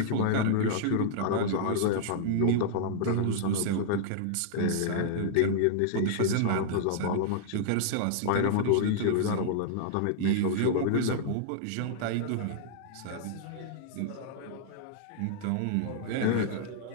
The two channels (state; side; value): different; both; correlation -0.01